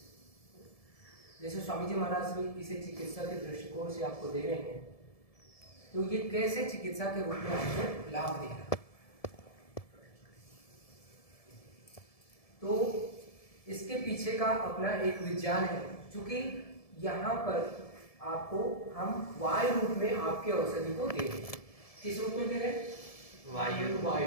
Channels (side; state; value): right; late; 1.7 ms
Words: जैसे स्वामी जी महाराज भी इसे चिकित्सा के दृष्टिकोण से आपको दे रहे हैं, तो ये कैसे चिकित्सा के रूप में आपको लाभ दे रहा है। तो इसके पीछे का अपना एक विज्ञान है, क्योंकि यहाँ पर आपको हम वायु रूप में आपके औषधि को दे रहे हैं। किस रूप में दे रहे हैं? वायु